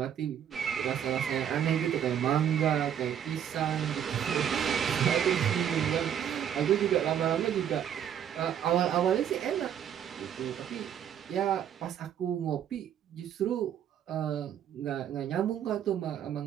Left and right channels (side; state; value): left; quieter; 9.3 dB